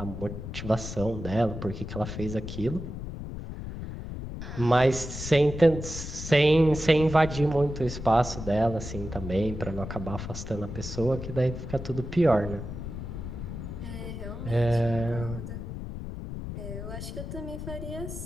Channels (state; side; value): noise; left; rumble, 8 dB below the sound